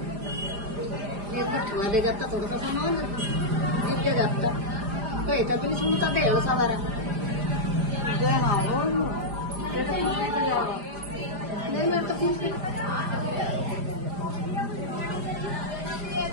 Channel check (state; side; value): late; left; 4.9 ms